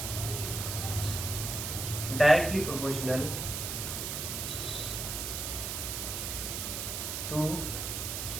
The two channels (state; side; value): noise; right; hiss, 3 dB below the sound